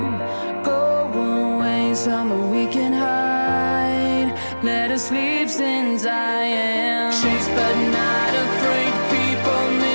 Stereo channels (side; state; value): both; inverted; correlation -1.00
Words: Go away somewhere we can hide. Let us sleep since I am chased but not afraid. People